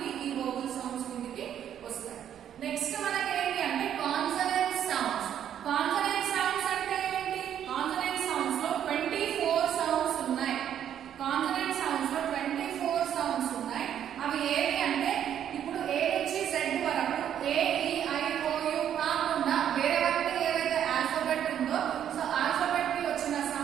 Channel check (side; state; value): left; quieter; 9.8 dB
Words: ఈ వోవెల్ సౌండ్స్ కిందకి వస్తాయి. నెక్స్ట్ మనకి ఏంటి అంటే కాన్సనెంట్ సౌండ్స్. కాన్సనెంట్ సౌండ్స్ అంటే ఏంటి? కాన్సనెంట్ సౌండ్స్ లో 24 సౌండ్స్ ఉన్నాయి. కాన్సనెంట్ సౌండ్స్ లో 24 సౌండ్స్ ఉన్నాయి. అవి ఏవి అంటే ఇప్పుడు ఏ నుంచి జెడ్ వరకు ఏ ఈ ఐ ఓ యు కాకుండా వేరే వరకు ఏవైతే ఆల్ఫాబెట్ ఉందో సో ఆల్ఫాబెట్ కి వచ్చిన